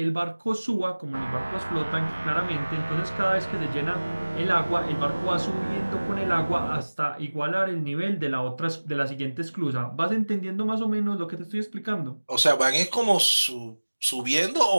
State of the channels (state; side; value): inverted; both; correlation -1.00